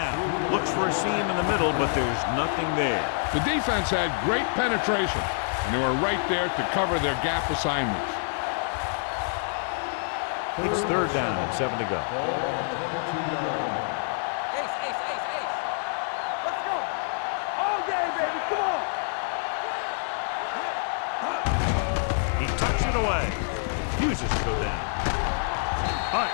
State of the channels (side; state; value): right; silent; digital silence